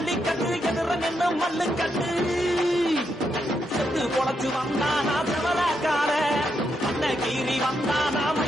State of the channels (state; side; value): normal; both; correlation 0.81